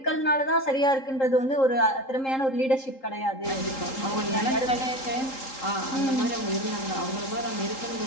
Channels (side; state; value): right; late; 3.8 ms